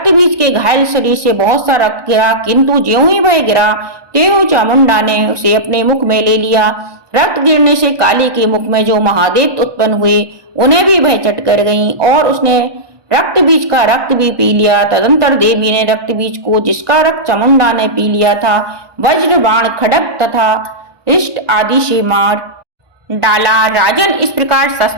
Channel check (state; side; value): late; left; 1.2 ms